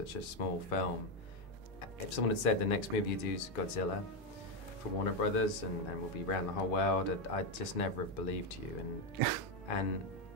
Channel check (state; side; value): normal; both; correlation 0.07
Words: a small film. If someone had said the next movie you do is Godzilla for Warner Brothers and we'll be around the whole world, I'd just never have believed you. And